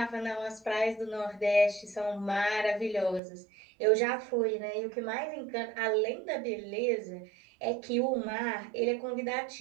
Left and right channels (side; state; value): left; drops out; at 3.2 s